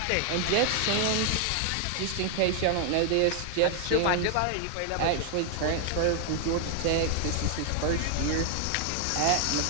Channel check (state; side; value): different; both; correlation 0.00